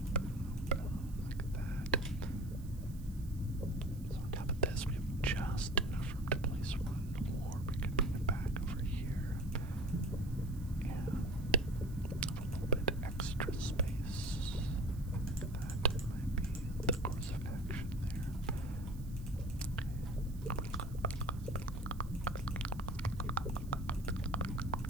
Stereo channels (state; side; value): noise; right; hiss, 23 dB below the sound